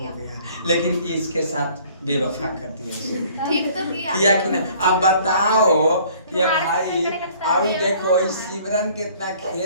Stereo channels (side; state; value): both; inverted; correlation -0.55